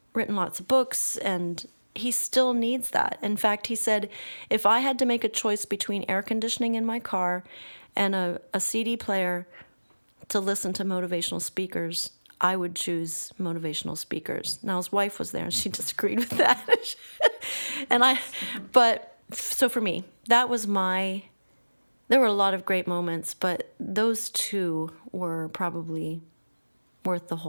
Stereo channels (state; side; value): inverted; both; correlation -1.00